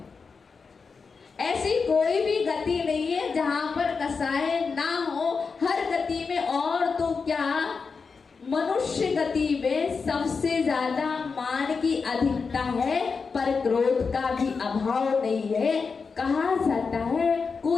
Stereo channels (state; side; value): quieter; right; 5.0 dB